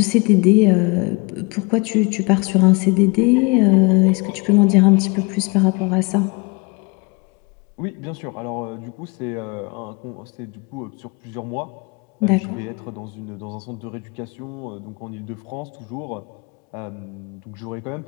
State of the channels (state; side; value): quieter; right; 28.6 dB